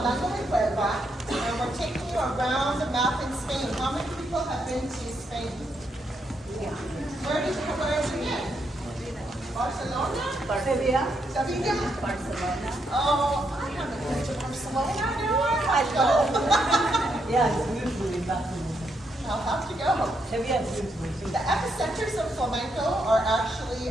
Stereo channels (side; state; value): both; normal; correlation 0.78